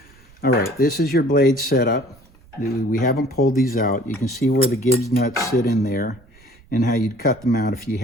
All right, this is your blade setup. We haven't pulled these out. You can see where the Gibbs nuts sit in there and how you'd cut them out if you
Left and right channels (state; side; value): noise; right; rumble, 27 dB below the sound